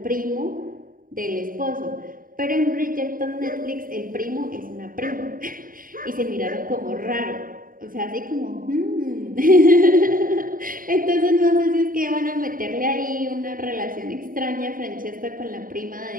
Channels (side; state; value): left; late; 0.41 ms